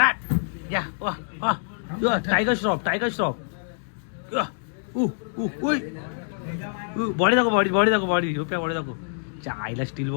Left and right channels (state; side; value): silent; right; digital silence